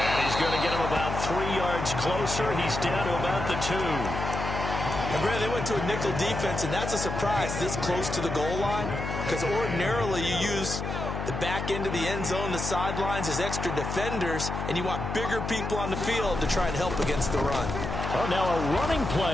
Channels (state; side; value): noise; left; hum, 4 dB below the sound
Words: he's going to get him about 3 yards closer. He's down to about the 2. And Brad, they went to a nickel defense, and that's a surprise this close to the goal line, because ordinarily you use the back end of the end zone, the sidelines as extra defenders, and you want bigger people on the field to try and help against the run. Oh, now a running